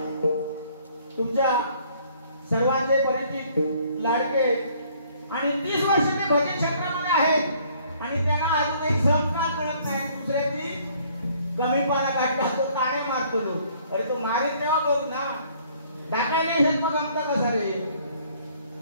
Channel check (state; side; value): inverted; both; correlation -0.61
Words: तुमच्या सर्वांचे परिचित लाडके आणि 30 वर्ष ते भजन क्षेत्रामध्ये आहेत आणि त्यांना अजूनही संस्कार कळत नाही. दुसऱ्याची कमीपणा काढला तो ताणे मारतो. अरे तो मारीत तेव्हा बघ ना, टाकायला येत मग आमचा कसा रे.